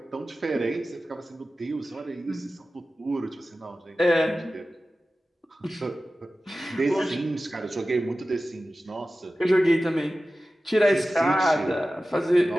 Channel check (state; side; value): normal; both; correlation 0.95